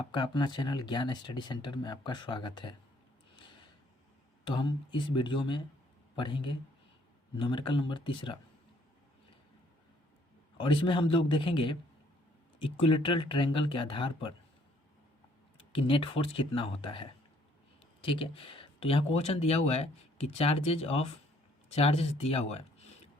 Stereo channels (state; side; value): normal; both; correlation 0.64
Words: अपना channel ज्ञान स्टडी सेंटर में आपका स्वागत है। तो हम इस वीडियो में पढ़ेंगे न्यूमेरिकल नंबर तीसरा, और इसमें हम लोग देखेंगे इक्विलेटरल ट्रायंगल के आधार पर कि नेट फोर्स कितना होता है। ठीक है, तो यहाँ क्वेश्चन दिया हुआ है कि चार्जेस दिया हुआ है